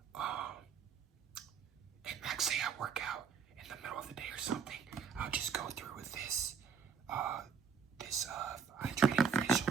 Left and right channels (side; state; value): left; quieter; 6.6 dB